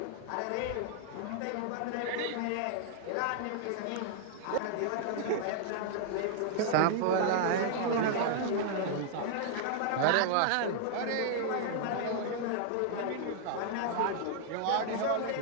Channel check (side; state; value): both; different; correlation -0.01